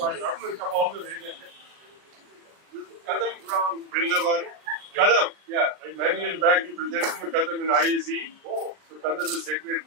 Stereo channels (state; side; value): late; left; 39 ms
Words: daughter come all the way. Kadam from Vrindavan. Kadam, yeah. Many years back, you presented me Kadam in IAC. Oh. So Kadam is